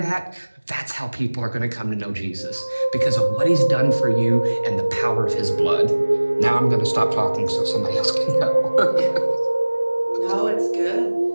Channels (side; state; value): both; inverted; correlation -1.00